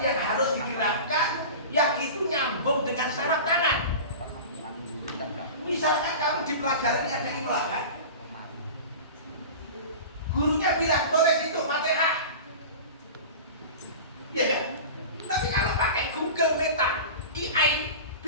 yang harus digerakkan, yang itu nyambung dengan saraf tangan. Misalkan kamu di pelajaran ada imla kan? Gurunya bilang tulis itu Fatihah. Ya kan? Tapi kalau pakai Google Meta, AI,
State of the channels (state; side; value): inverted; both; correlation -0.33